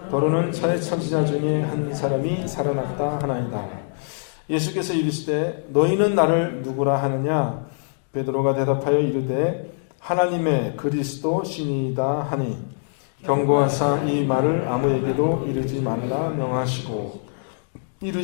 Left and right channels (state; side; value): silent; right; digital silence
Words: 더러는 선지자 중에 한 사람이 살아났다 하나이다. 예수께서 이르시되 너희는 나를 누구라 하느냐? 베드로가 대답하여 이르되 하나님의 그리스도 신이다 하니 경고하사 이 말을 아무에게도 이르지 말라 명하시고